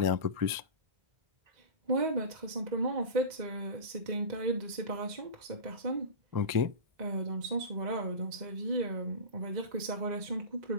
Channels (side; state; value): left; late; 2.0 ms